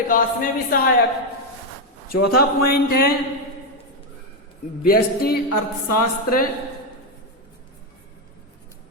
में भी सहायक। चौथा पॉइंट है व्यष्टि अर्थशास्त्र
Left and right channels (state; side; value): normal; both; correlation 0.05